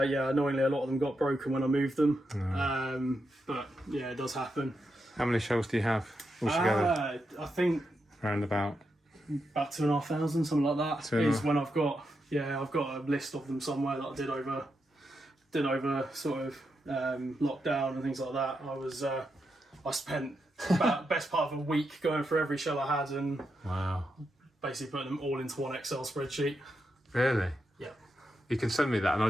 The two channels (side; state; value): both; normal; correlation 0.85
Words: Annoyingly, a lot of them got broken when I moved them. But yeah, it does happen. How many shells do you have altogether? I think around about 2,500, something like that. Is when I've got a list of them somewhere that I did over sort of lockdown and things like that. I spent about best part of a week going through every shell I had and basically putting them all into one Excel spreadsheet. Really? Yeah. You can send me that, and